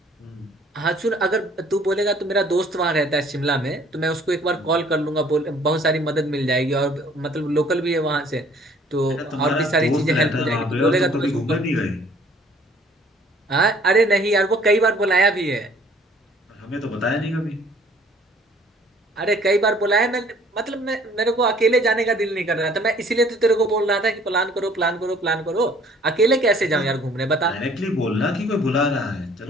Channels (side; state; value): both; normal; correlation 0.56